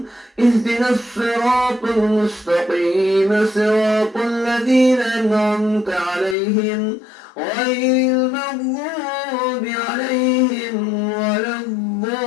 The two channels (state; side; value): drops out; right; at 6.4 s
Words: اهدنا الصراط المستقيم صراط الذين أنعمت عليهم غير المغضوب عليهم ولا